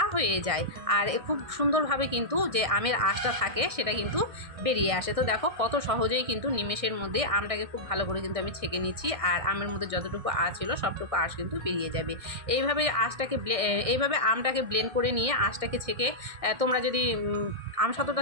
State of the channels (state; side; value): late; left; 1.6 ms